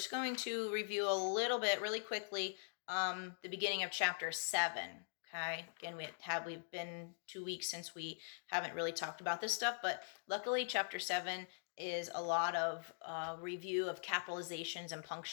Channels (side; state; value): right; silent; digital silence